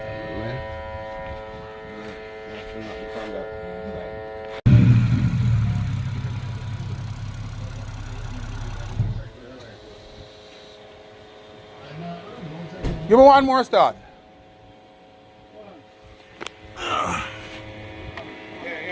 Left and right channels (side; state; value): both; identical; correlation 1.00